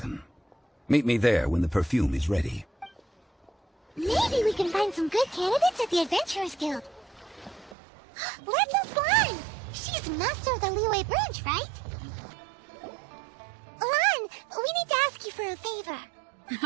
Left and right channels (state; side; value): drops out; left; at 7.8 s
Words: Meet me there when the perfume is ready. Maybe we can find some good candidates at the Adventurers Guild. Let's ask Lan! She's master of the Liyue branch, right? Lan, we need to ask you for a favor.